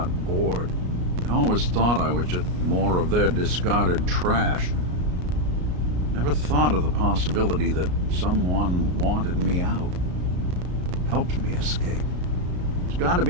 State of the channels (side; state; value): left; late; 33 ms